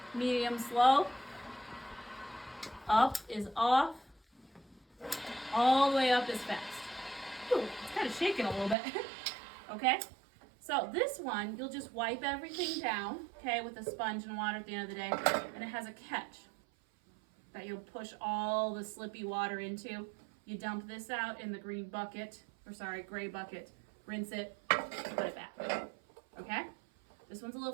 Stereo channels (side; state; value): left; drops out; at 8.8 s